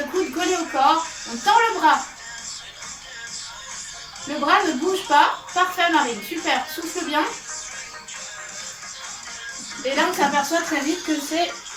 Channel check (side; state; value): both; identical; correlation 1.00